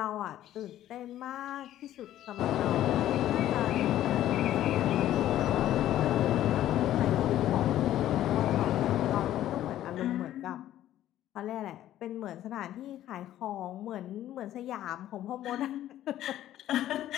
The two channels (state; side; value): quieter; right; 12.8 dB